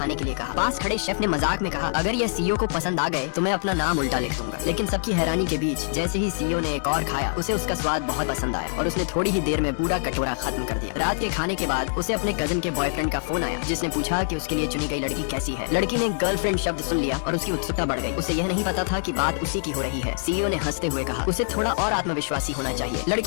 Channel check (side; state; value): right; silent; digital silence